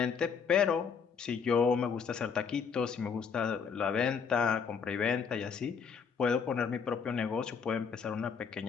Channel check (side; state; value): right; quieter; 6.2 dB